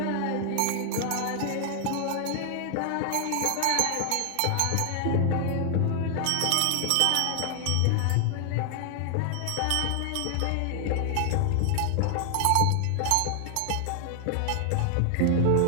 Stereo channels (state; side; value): different; both; correlation 0.00